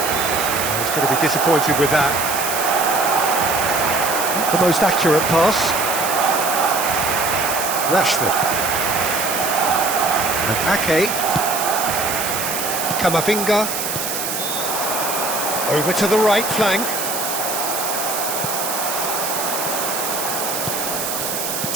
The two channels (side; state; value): right; noise; hiss, 3 dB below the sound